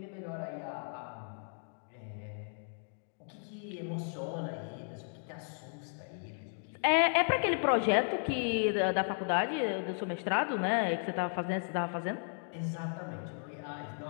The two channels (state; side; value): silent; right; 55 dB below the other